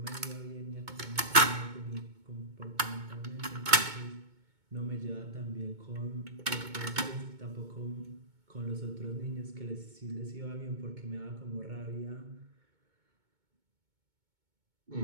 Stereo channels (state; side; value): late; left; 2.2 ms